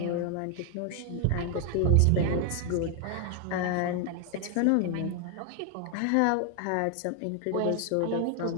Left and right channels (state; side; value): different; both; correlation 0.01